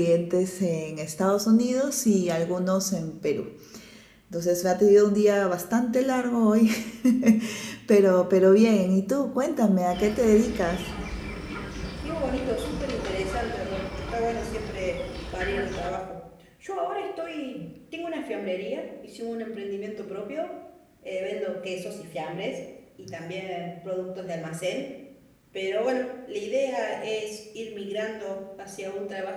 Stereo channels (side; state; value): both; identical; correlation 1.00